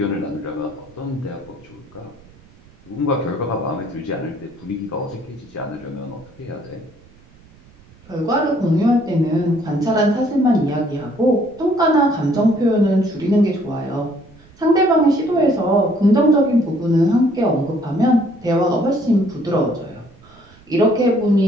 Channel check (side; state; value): right; noise; rumble, 26 dB below the sound